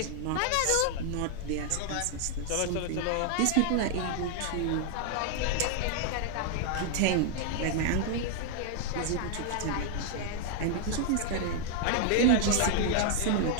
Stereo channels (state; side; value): different; both; correlation 0.00